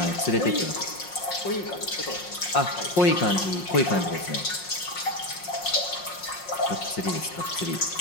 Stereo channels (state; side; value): late; right; 5.5 ms